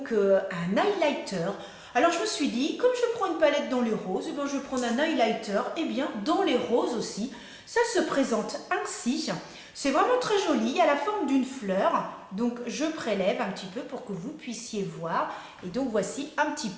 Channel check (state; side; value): identical; both; correlation 1.00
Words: un highlighter. Alors je me suis dit, comme je prends une palette dans les roses, eh bien, je vais prendre un highlighter et bien dans les roses aussi. Ça se présente ainsi. C'est vraiment très joli, à la forme d'une fleur. Donc je prélève un petit peu pour que vous puissiez voir. Et donc voici un petit